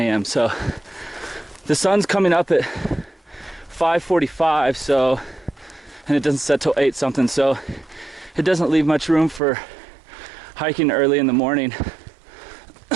so the sun's coming up at 5:45, so, and it doesn't set till 8 something, so it doesn't leave much room for hiking early in the morning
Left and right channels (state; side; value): drops out; left; at 9.4 s